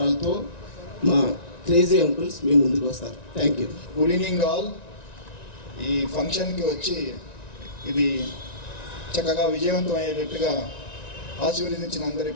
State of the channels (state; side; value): late; right; 1.9 ms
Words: మా క్రేజీ అంకుల్స్ మీ ముందుకు వస్తారు. Thank you. Good evening all. ఈ ఫంక్షన్కి వచ్చి ఇది చక్కగా విజయవంతం అయ్యేటట్టుగా ఆశీర్వదించిన అందరి